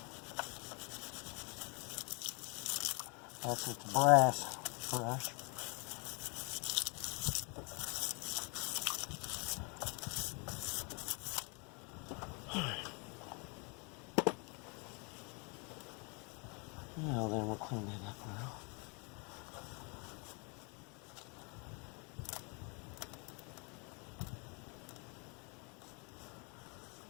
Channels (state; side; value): quieter; right; 33.5 dB